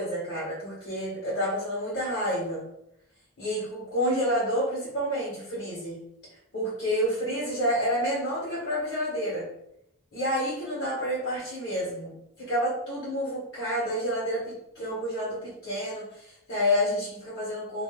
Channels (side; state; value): both; normal; correlation -0.04